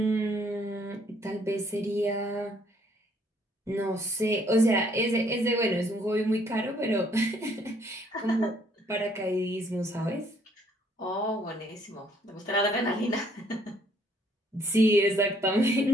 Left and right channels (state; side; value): normal; both; correlation 0.65